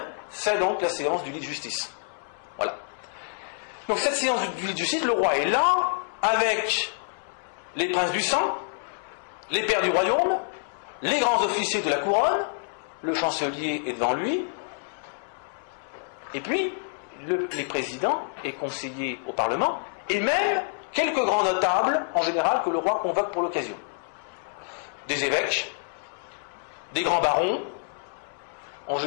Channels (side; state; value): right; silent; 60 dB below the other